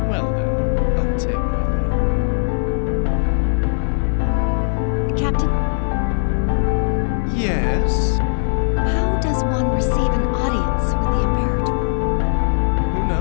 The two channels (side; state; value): right; silent; digital silence